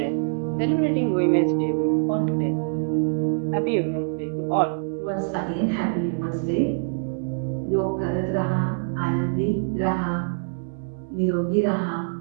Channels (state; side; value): silent; left; 62 dB below the other